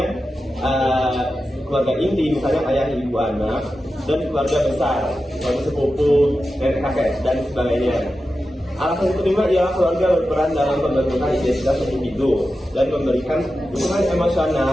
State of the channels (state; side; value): normal; both; correlation 0.92